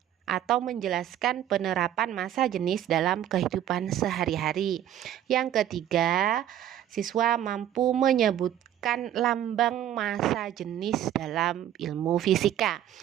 atau menjelaskan penerapan massa jenis dalam kehidupan sehari-hari. Yang ketiga, siswa mampu menyebutkan lambang massa jenis dalam ilmu fisika.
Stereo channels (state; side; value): quieter; left; 11.3 dB